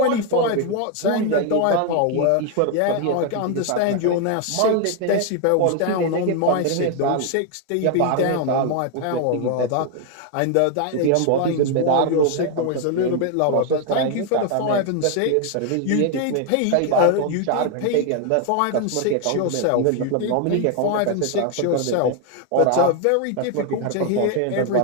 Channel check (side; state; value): both; different; correlation 0.01